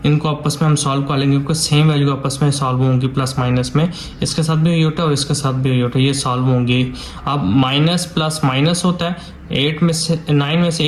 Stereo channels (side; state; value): both; identical; correlation 1.00